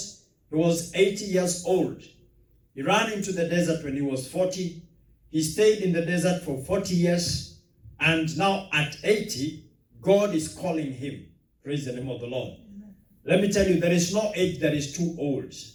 He was 80 years old. He ran into the desert when he was 40. He stayed in the desert for 40 years. And now at 80, God is calling him. Praise the name of the Lord. Amen. Let me tell you, there is no age that is too old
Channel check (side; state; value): both; identical; correlation 1.00